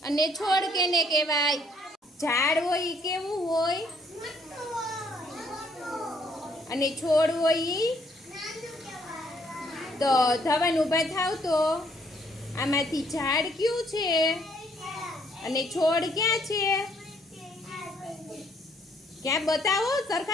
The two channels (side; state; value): both; normal; correlation 0.67